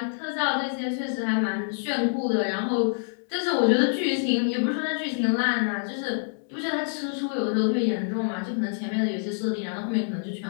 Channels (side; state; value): right; silent; digital silence